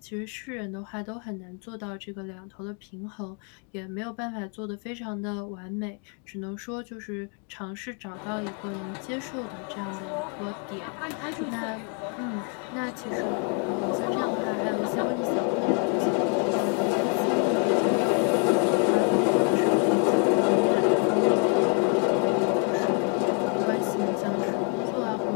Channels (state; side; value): quieter; right; 39.4 dB